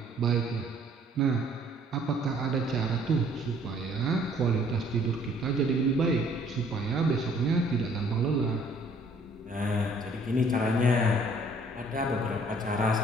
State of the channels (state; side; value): normal; both; correlation 0.59